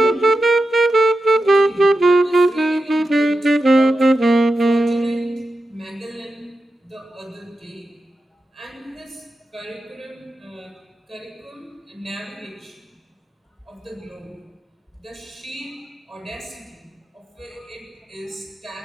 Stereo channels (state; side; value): normal; both; correlation 0.90